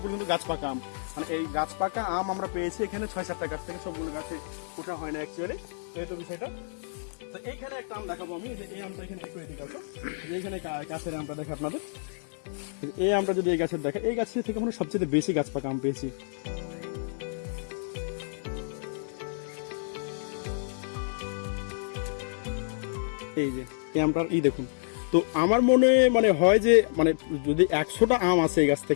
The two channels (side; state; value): right; silent; digital silence